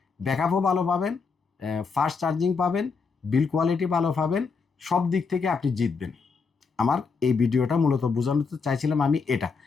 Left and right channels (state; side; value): quieter; right; 5.0 dB